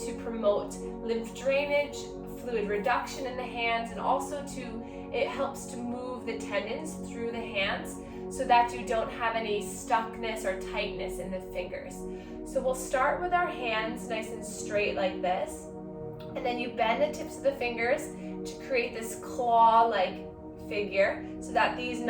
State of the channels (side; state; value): both; identical; correlation 1.00